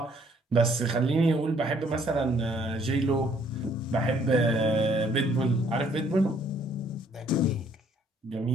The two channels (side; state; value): both; normal; correlation 0.63